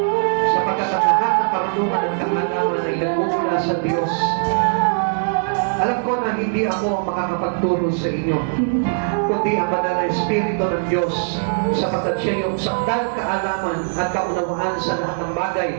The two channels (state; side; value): silent; left; digital silence